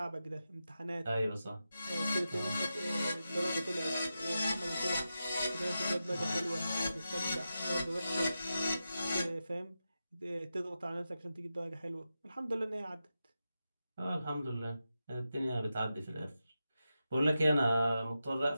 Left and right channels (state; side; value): inverted; both; correlation -0.90